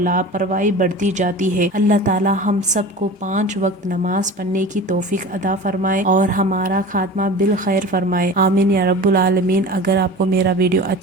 بڑھتی جاتی ہے۔ اللہ تعالی ہم سب کو 5 وقت نماز پڑھنے کی توفیق عطا فرمائے اور ہمارا خاتمہ بالخیر فرمائے، آمین یا رب العالمین۔ اگر آپ کو میرا ویڈیو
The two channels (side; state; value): both; normal; correlation 0.36